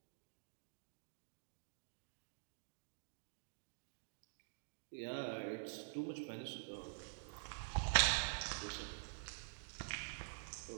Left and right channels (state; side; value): silent; left; digital silence